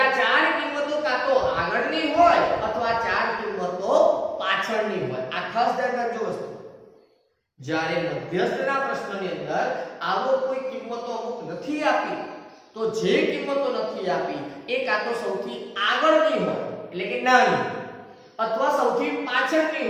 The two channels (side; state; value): both; identical; correlation 1.00